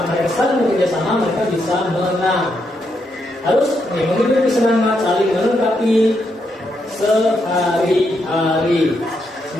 mereka saling bekerja sama, mereka bisa menang. Harus menghidupi semangat, saling melengkapi sehari-hari.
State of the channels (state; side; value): normal; both; correlation 0.80